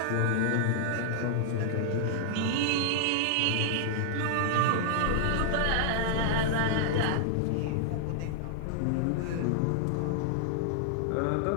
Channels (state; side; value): different; both; correlation -0.01